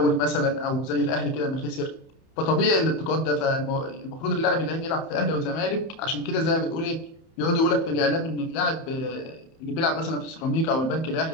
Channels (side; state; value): right; late; 31 ms